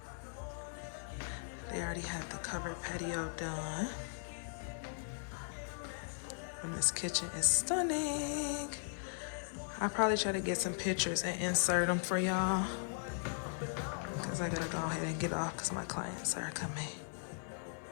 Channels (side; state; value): right; silent; 52 dB below the other